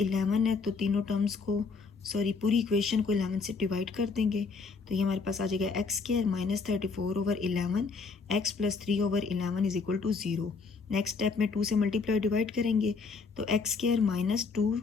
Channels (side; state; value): right; quieter; 4.7 dB